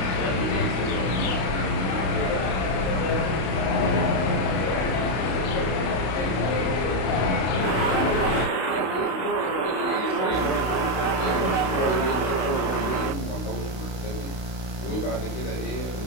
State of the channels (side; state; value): right; late; 32 ms